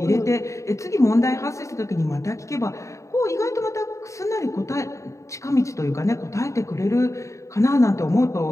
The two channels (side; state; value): right; late; 0.15 ms